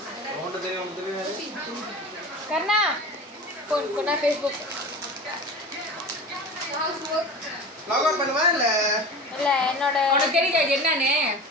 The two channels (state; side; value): normal; both; correlation 0.33